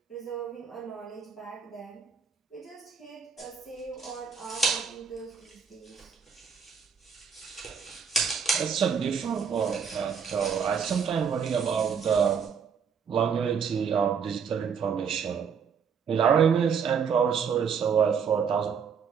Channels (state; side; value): quieter; left; 6.6 dB